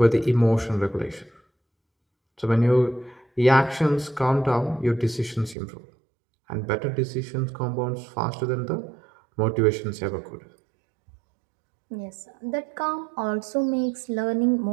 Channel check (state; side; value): drops out; left; at 5.6 s